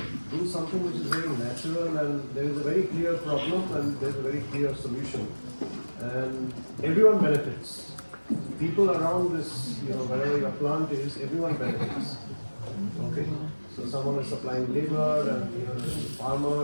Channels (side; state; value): both; inverted; correlation -1.00